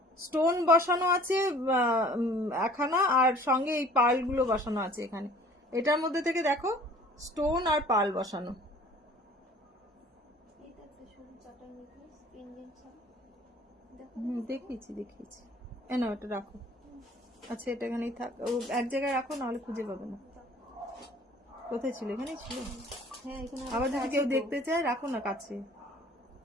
স্টোন বসানো আছে একখানা, আর সঙ্গে এই পার্লগুলো বসানো আছে এখানে। এটার মধ্যে থেকে দেখো স্টোন আর পার্ল বসানো। এটা একটা সরু চাটা নেকলেস, পেন্ডেন্ট ছাড়া। দেখো দেখিয়েছি। না এটা রাখো। আচ্ছা এটা এখানেই থাক, ও এক জায়গায় রাখো, নাহলে খুঁজে পাবে না। কোথায় ছিল? এখানেই ছিল। হ্যাঁ, এখানে আবার যদি কেউ আছে তো। দেখতে চায় রাখো না কাছে।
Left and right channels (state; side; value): normal; both; correlation 0.51